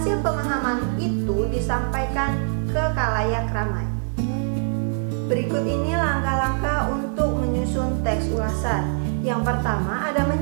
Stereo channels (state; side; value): silent; left; digital silence